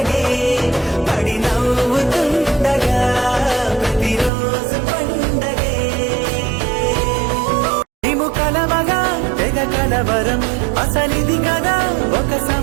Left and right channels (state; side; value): drops out; left; at 4.3 s